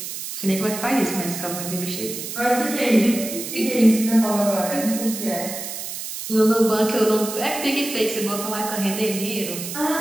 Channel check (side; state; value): right; noise; hiss, 7 dB below the sound